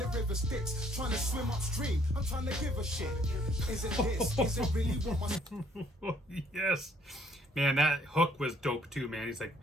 river Styx. Trying to swim upstream, I'm trying to give a shit. Is it this? Is it really what my... Yes. Man, that hook was dope too, man. He's like,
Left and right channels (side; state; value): both; normal; correlation 0.63